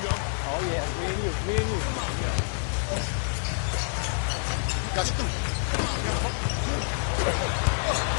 Oh, yeah. Me and you. Me and you. Gotcha.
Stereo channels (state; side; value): silent; right; 60 dB below the other